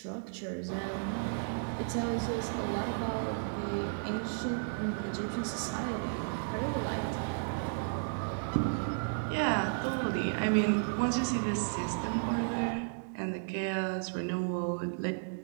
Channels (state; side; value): silent; left; digital silence